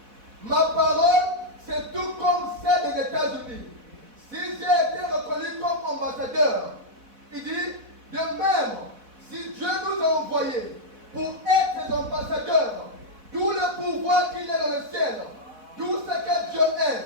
ma parole, c'est tout comme celle des États-Unis. Si j'ai été reconnu comme ambassadeur, il dit, de même, si Dieu nous a envoyés pour être des ambassadeurs, tout le pouvoir qu'il y a dans le ciel, tout ce que Dieu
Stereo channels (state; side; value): late; left; 4.1 ms